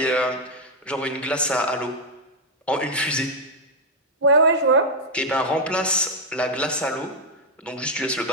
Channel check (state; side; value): normal; both; correlation 0.00